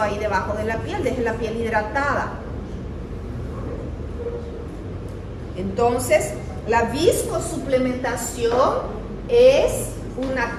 ahí debajo de la piel, deje la piel hidratada. Entonces, la viscosuplementación es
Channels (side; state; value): both; identical; correlation 1.00